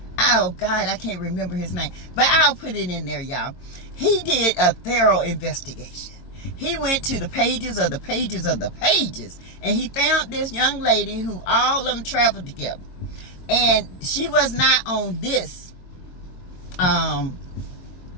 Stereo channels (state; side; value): late; right; 22 ms